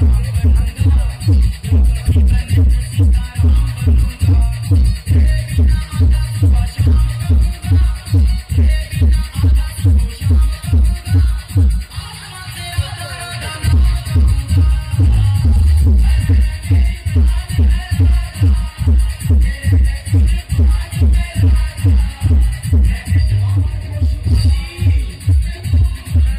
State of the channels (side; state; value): both; identical; correlation 1.00